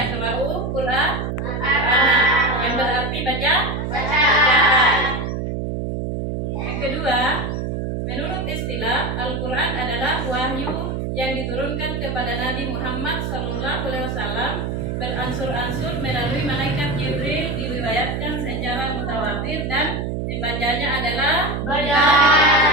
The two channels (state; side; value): noise; right; hum, 3 dB below the sound